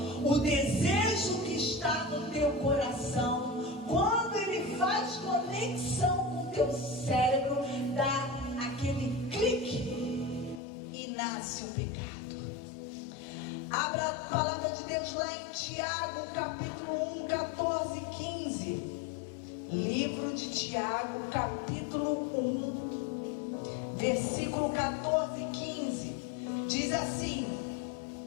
O desejo que está no teu coração, quando ele faz conexão com o teu cérebro, dá aquele clique e nasce o pecado. Abra a palavra de Deus lá em Tiago, capítulo 1, 14 e 15. Livro de Tiago, capítulo 1, versículo 14 e 15. Diz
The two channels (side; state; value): right; drops out; at 10.6 s